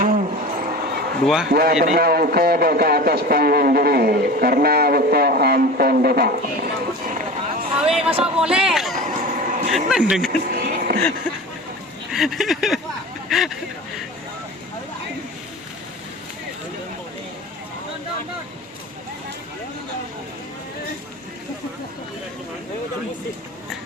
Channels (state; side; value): normal; both; correlation 0.33